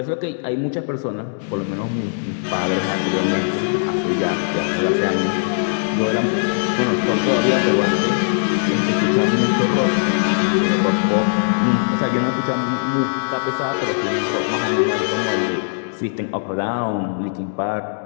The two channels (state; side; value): silent; right; digital silence